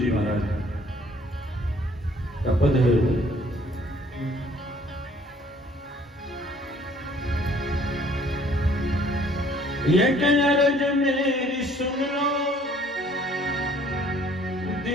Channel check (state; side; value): normal; both; correlation 0.58